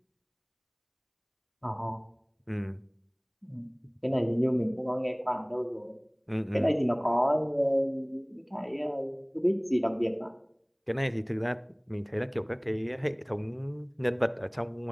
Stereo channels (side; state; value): both; identical; correlation 1.00